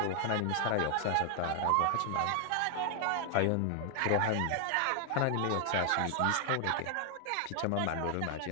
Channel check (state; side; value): different; both; correlation 0.00